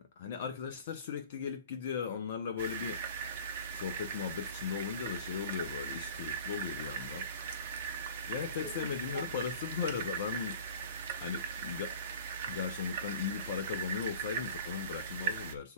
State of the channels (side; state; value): both; inverted; correlation -0.43